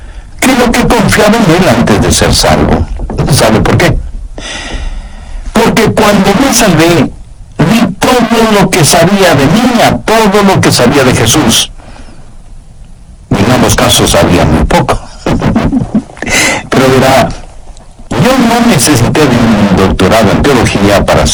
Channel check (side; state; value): both; identical; correlation 1.00